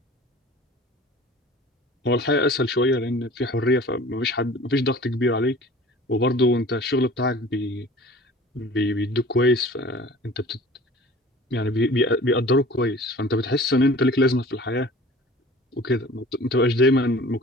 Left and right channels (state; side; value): normal; both; correlation 0.45